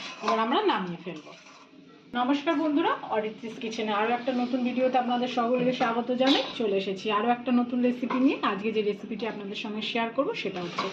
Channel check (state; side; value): identical; both; correlation 1.00